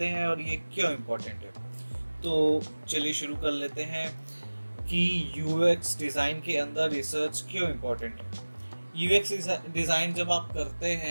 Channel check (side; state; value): both; inverted; correlation -1.00